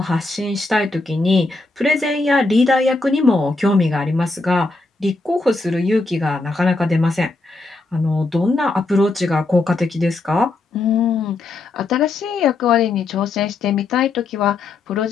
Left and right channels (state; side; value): quieter; right; 3.4 dB